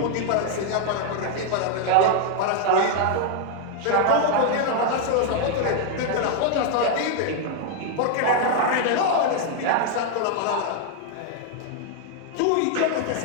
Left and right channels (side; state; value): both; different; correlation 0.00